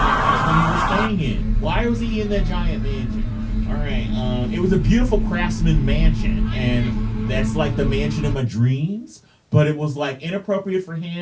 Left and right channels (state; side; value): identical; both; correlation 1.00